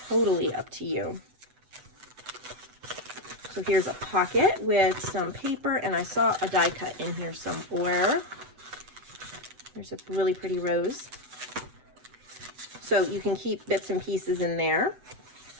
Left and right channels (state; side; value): late; left; 8.0 ms